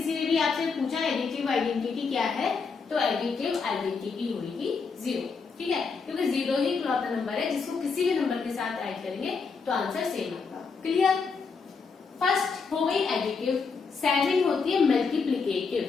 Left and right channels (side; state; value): right; quieter; 5.0 dB